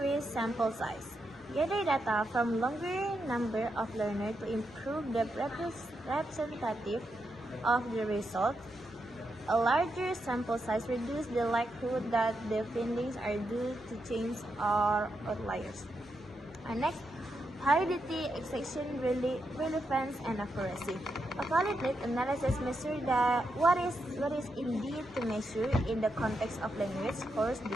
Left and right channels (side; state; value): both; normal; correlation 0.84